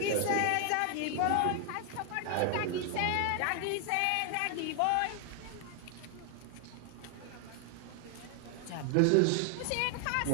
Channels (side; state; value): both; different; correlation 0.00